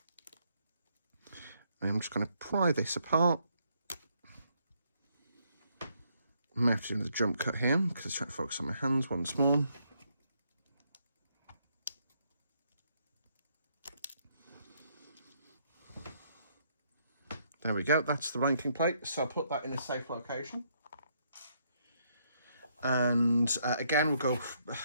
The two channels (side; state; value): both; inverted; correlation -0.72